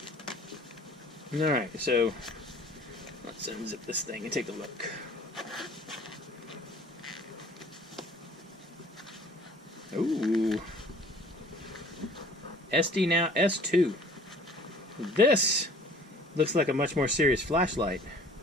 Alright, so let's unzip this thing and take a look. Ooh. SdeNow S2. This looks like a much more serious flashlight.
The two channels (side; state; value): both; normal; correlation 0.51